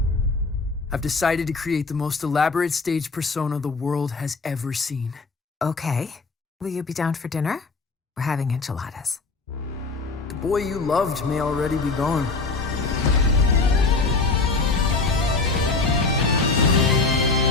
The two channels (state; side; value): quieter; right; 3.9 dB